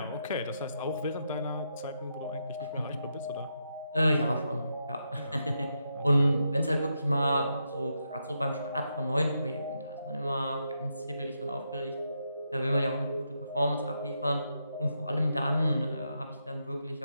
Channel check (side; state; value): both; inverted; correlation -0.82